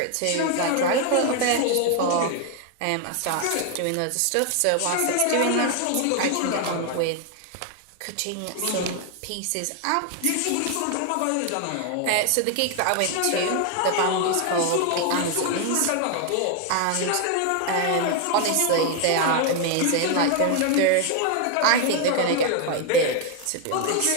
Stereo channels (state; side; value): different; both; correlation 0.01